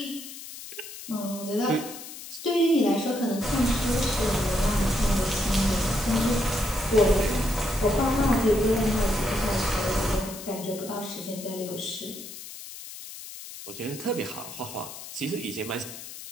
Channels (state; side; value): noise; left; hiss, 12 dB below the sound